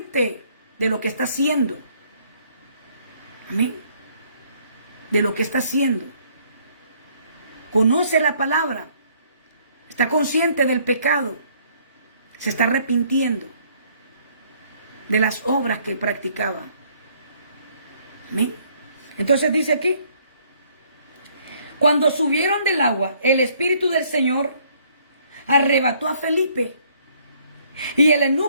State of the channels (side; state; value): both; inverted; correlation -0.64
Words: de lo que está haciendo. Amén. De lo que está haciendo. Conoce la palabra. Está consciente del pecado. Se está arrepintiendo de las obras que practicaba. Amén. Entonces dice aquí, cuando subieron del agua, el Espíritu del Señor arrebató a Felipe y el